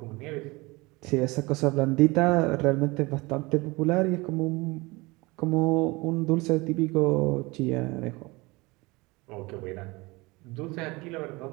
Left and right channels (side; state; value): left; quieter; 23.7 dB